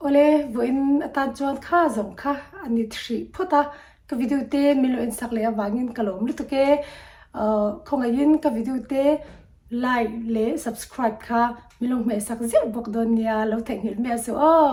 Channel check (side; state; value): both; identical; correlation 1.00